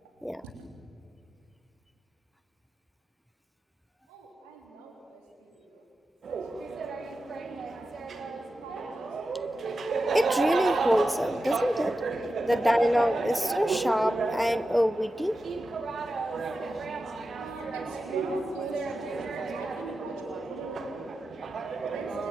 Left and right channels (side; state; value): both; normal; correlation 0.91